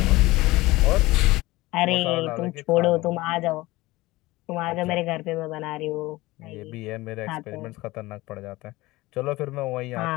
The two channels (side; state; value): right; quieter; 19.8 dB